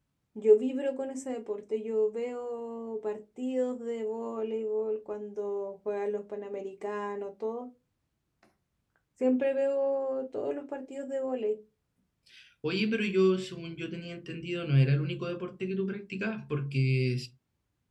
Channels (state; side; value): identical; both; correlation 1.00